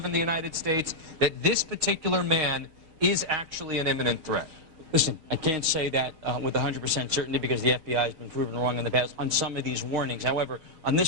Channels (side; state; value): left; late; 6.4 ms